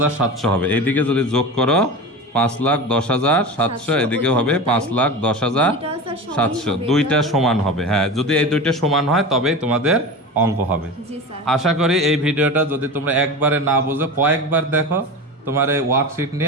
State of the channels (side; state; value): both; normal; correlation 0.28